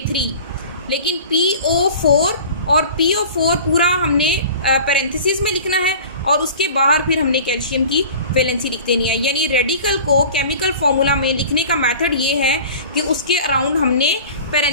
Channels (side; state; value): both; inverted; correlation -0.41